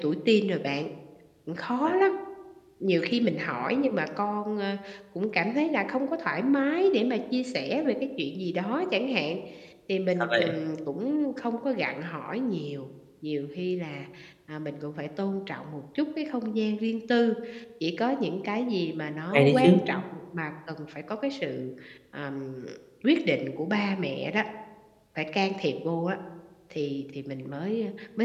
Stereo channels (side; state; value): both; identical; correlation 1.00